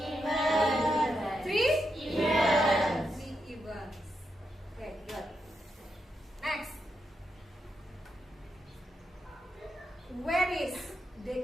3? Events. 3 events. Okay, good. Next. Where is the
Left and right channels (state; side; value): normal; both; correlation 0.83